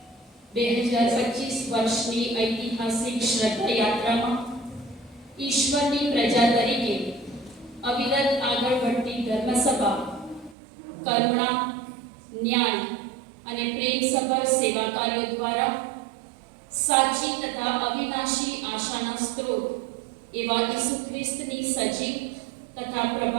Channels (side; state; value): left; drops out; at 10.6 s